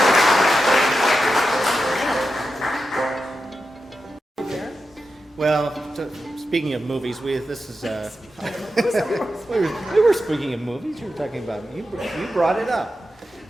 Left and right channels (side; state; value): both; normal; correlation 0.90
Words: speaking of movies, this is we were speaking of movies. You were talking about you brought it up.